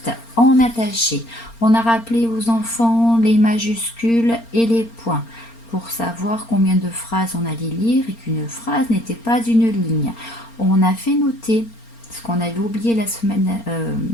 en attaché. On a rappelé aux enfants les majuscules et les points pour savoir combien de phrases on allait lire et qu'une phrase n'était pas une ligne. On a fait noter ce qu'on avait oublié la semaine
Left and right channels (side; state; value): right; late; 4.3 ms